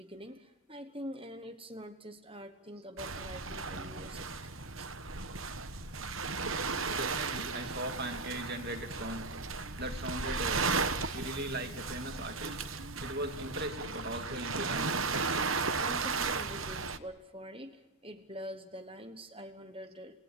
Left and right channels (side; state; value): left; quieter; 3.1 dB